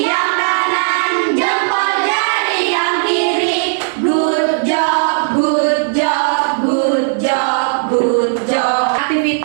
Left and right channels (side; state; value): left; silent; digital silence